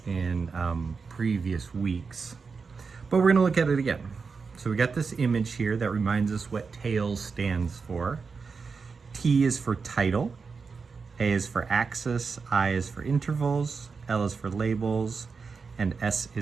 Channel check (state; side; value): quieter; left; 5.0 dB